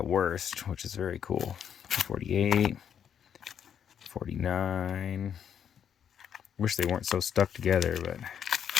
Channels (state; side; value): quieter; right; 8.5 dB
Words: worst, which is very cool. 248. 49. Wish they weren't so stuck together, but